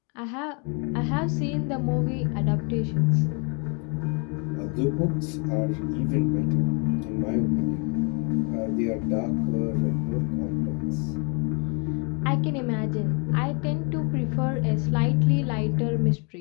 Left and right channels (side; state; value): right; quieter; 35.4 dB